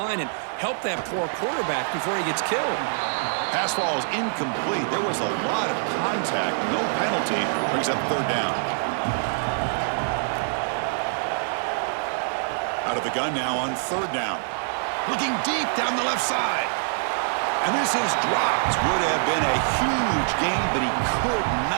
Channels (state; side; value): silent; left; digital silence